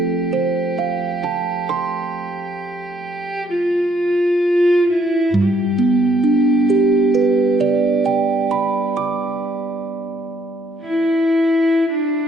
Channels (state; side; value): normal; both; correlation 0.67